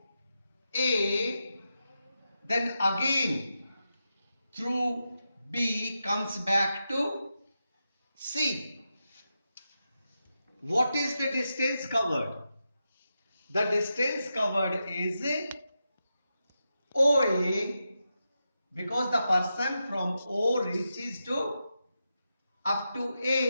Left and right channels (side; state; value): both; inverted; correlation -0.88